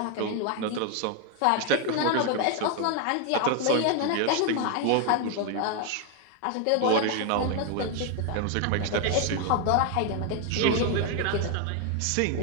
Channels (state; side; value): different; both; correlation 0.01